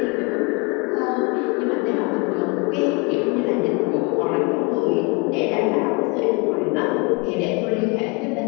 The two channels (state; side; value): quieter; right; 30.7 dB